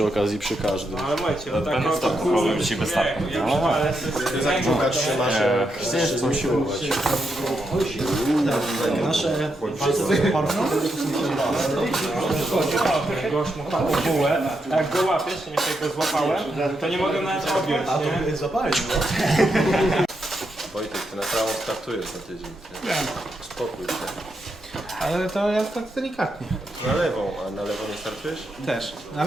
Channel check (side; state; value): both; normal; correlation 0.82